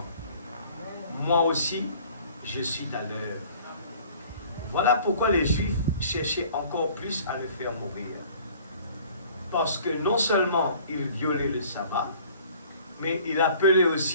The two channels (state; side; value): inverted; both; correlation -0.52